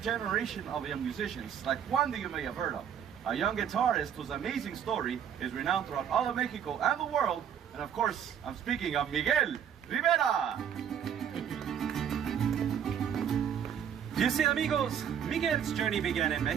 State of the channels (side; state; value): left; quieter; 8.7 dB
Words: of young musicians, like one that you may have heard of, a young guitarist whose amazing story is renowned throughout all of Mexico and the world, and of course, I'm speaking of Miguel Rivera. You see, amigos, Miguel's journey began in